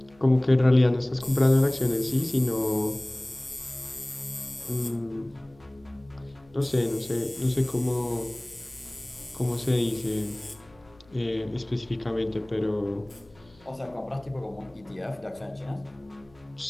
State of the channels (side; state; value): left; noise; hum, 28 dB below the sound